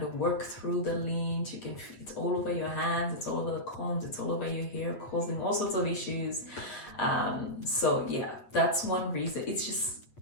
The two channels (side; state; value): right; late; 8.6 ms